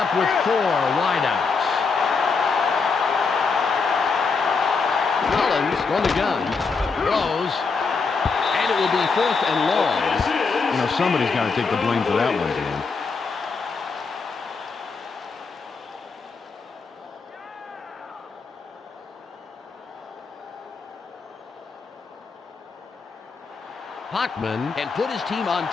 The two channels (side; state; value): right; quieter; 4.8 dB